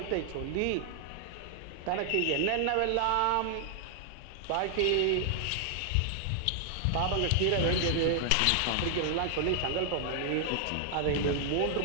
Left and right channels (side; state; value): both; different; correlation 0.00